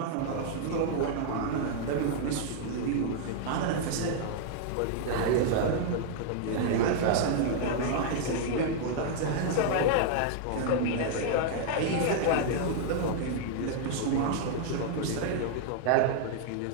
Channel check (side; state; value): both; different; correlation -0.01